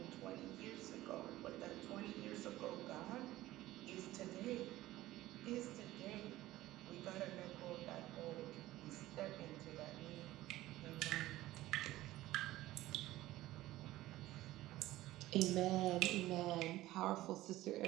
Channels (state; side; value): quieter; left; 16.3 dB